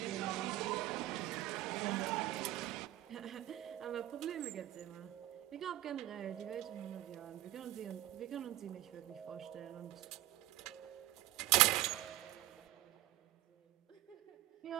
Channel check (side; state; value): left; quieter; 15.3 dB